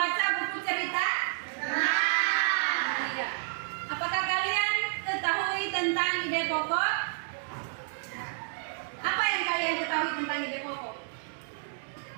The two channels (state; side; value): silent; left; digital silence